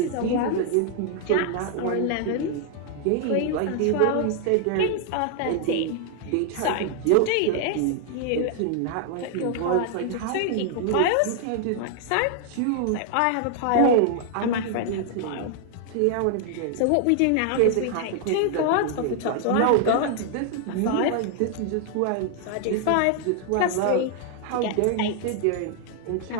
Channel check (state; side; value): different; both; correlation 0.00